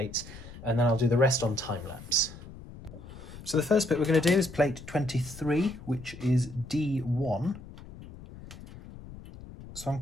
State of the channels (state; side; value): noise; left; rumble, 15 dB below the sound